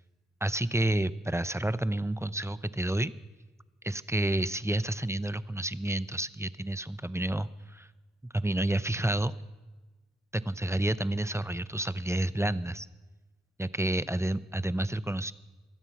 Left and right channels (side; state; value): both; normal; correlation 0.77